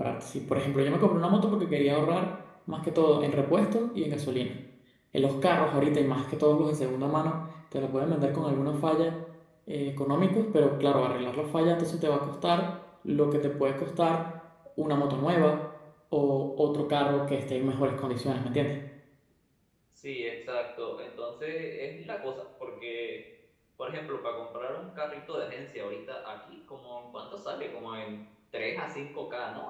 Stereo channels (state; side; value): identical; both; correlation 1.00